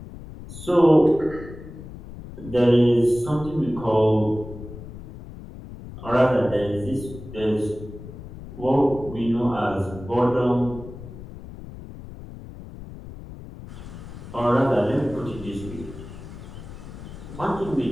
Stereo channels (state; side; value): noise; left; rumble, 14 dB below the sound